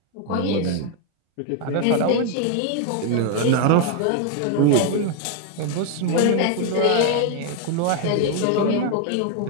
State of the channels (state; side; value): different; both; correlation 0.01